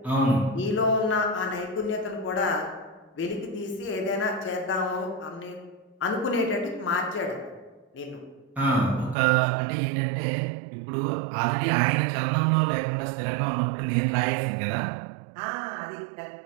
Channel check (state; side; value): drops out; left; at 9.2 s